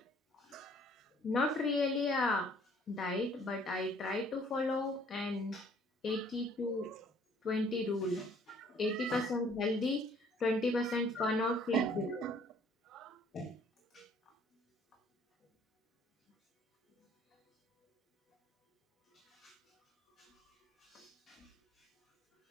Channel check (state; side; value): normal; both; correlation 0.59